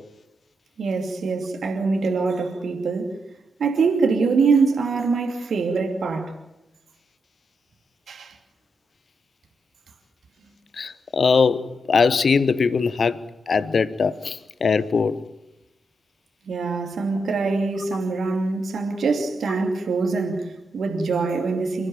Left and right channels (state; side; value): normal; both; correlation 0.82